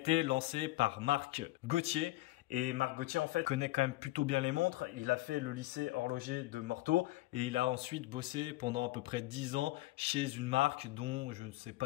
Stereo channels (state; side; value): quieter; right; 18.4 dB